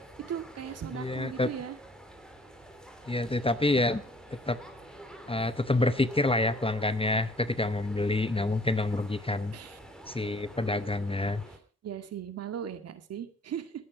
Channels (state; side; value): normal; both; correlation 0.56